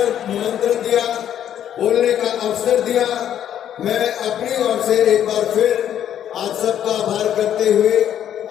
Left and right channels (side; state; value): right; quieter; 10.2 dB